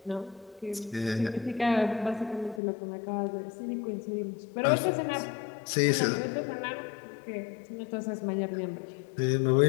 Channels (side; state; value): right; drops out; at 2.6 s